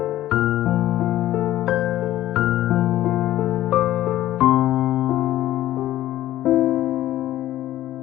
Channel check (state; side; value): quieter; right; 14.0 dB